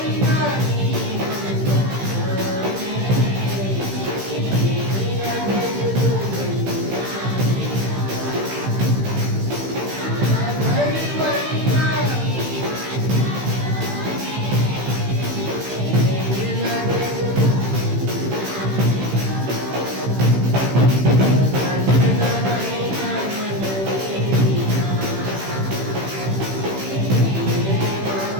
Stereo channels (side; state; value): left; late; 15 ms